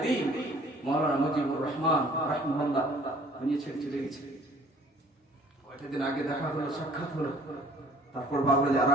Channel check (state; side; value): normal; both; correlation 0.55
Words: দ্বীন মাওলানা মুজিবুর রহমান রাহিমাহুল্লাহ দুনিয়া ছেড়ে চলে গেছে। কয়েকটা দিন আগে দেখা হলো, সাক্ষাৎ হলো, তারপর ভাবলো যে